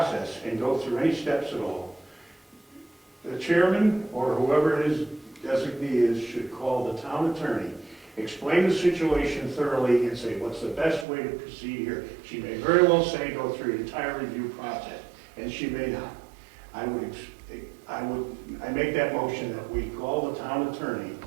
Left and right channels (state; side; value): drops out; left; at 11.1 s